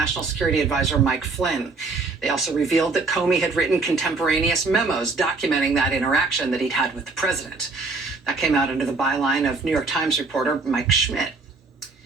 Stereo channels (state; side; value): quieter; left; 3.9 dB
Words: Security Advisor Mike Flynn. They also revealed that Comey had written contemporaneous memos documenting that interaction that he'd had with the president. That came out under the byline of New York Times reporter Mike Schmidt.